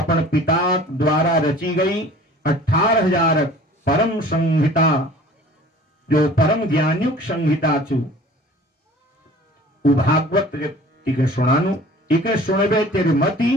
पिता द्वारा रची गई 18,000 परम संहिता, जो परम ज्ञानयुक्त संहिता छु उ भागवत तिके सुनानु। इके सुनबे तेरे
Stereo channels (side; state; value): both; normal; correlation 0.47